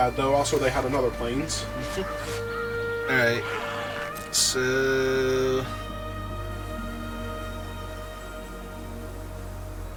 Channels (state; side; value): identical; both; correlation 1.00